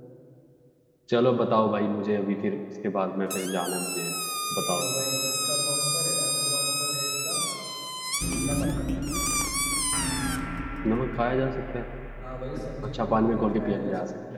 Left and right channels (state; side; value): identical; both; correlation 1.00